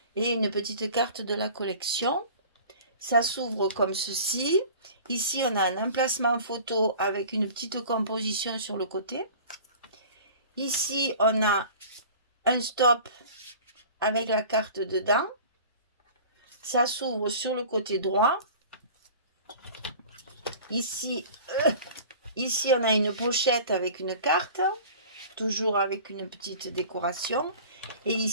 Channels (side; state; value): both; inverted; correlation -0.42